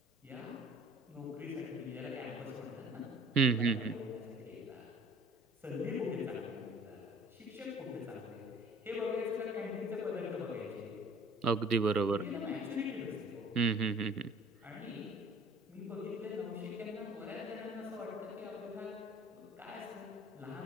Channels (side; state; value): both; normal; correlation 0.51